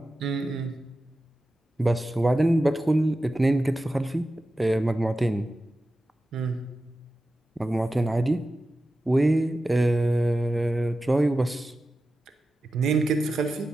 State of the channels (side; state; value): both; normal; correlation 0.93